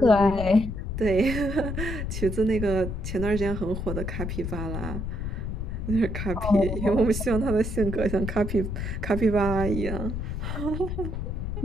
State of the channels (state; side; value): noise; left; rumble, 4 dB below the sound